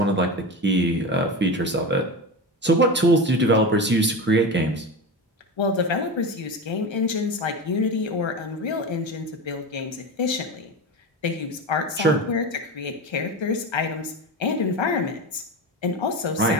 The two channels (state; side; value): normal; both; correlation 0.23